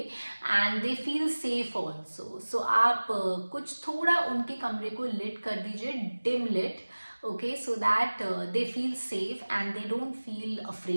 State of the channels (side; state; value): both; inverted; correlation -1.00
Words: they feel safe also. So आप कुछ थोड़ा उनके कमरे को लिट कर दीजिए, dim lit, okay, so that they feel safe and they don't feel